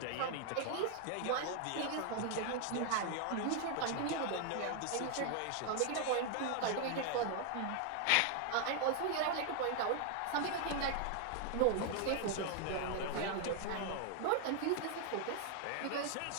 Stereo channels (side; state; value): both; different; correlation 0.00